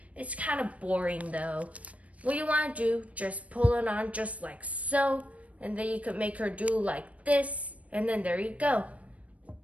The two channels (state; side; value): late; left; 0.066 ms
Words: It's kind of boring though. What you want to do, just pull it on just like so. And then you could make her do like this. And then there you go.